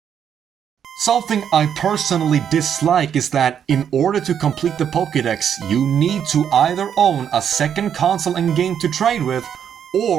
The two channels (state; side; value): quieter; left; 8.5 dB